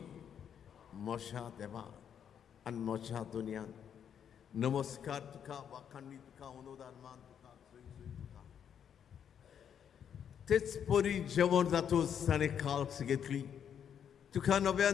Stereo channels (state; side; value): quieter; right; 8.5 dB